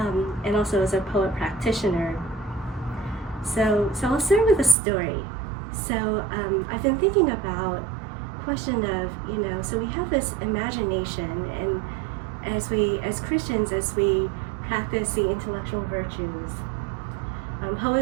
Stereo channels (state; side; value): drops out; left; at 4.8 s